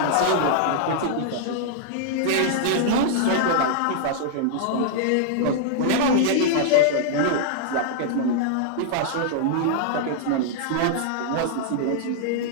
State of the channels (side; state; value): both; different; correlation -0.01